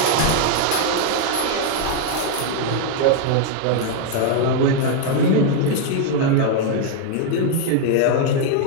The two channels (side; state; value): both; different; correlation 0.00